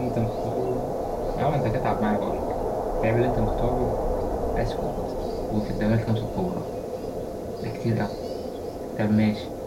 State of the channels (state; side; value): identical; both; correlation 1.00